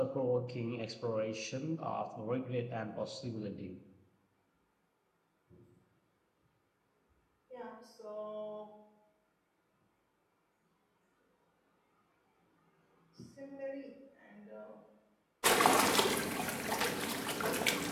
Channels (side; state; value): both; identical; correlation 1.00